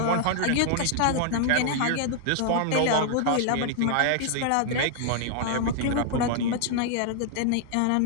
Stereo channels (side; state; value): both; different; correlation -0.01